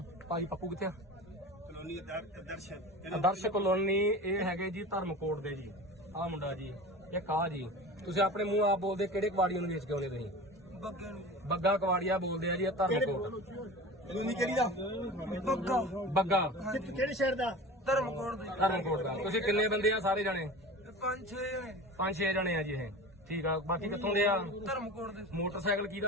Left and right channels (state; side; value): normal; both; correlation 0.34